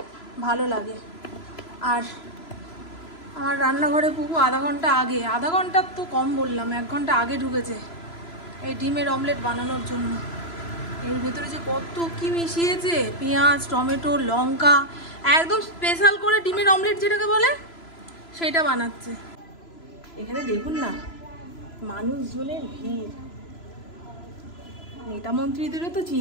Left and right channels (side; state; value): right; late; 3.0 ms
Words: ভালো লাগে। আর আমার রান্নাঘরে পুকু আধা ঘন্টা তো কম বললাম, 1 ঘন্টা আগে ঢুকেছে এই ডিমের অমলেট বানানোর জন্য। এর ভেতরে যে কত কি মিশিয়েছে, পেঁয়াজ, টমেটো, লঙ্কা, একদম স্পেশাল করে ডিমের অমলেট যেটাকে বলে সেটা বানাচ্ছে। এখানে দেখুন না মানুষজনের ভিড়। নেতা মন্ত্রীদেরও তো